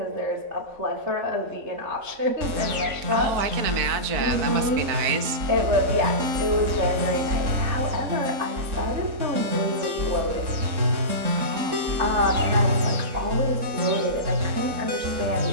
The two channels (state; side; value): late; left; 3.6 ms